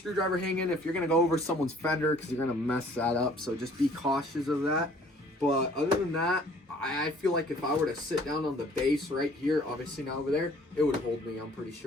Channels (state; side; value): normal; both; correlation 0.56